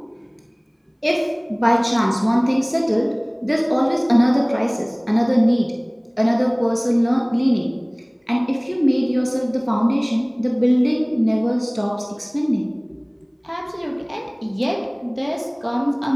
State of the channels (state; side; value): identical; both; correlation 1.00